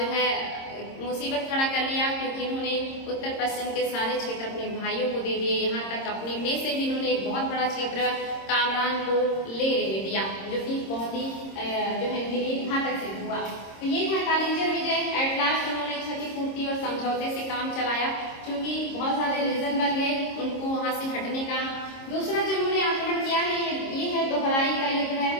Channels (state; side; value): late; right; 26 ms